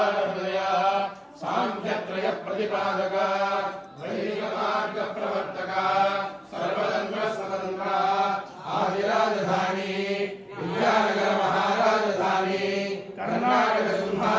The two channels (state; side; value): identical; both; correlation 1.00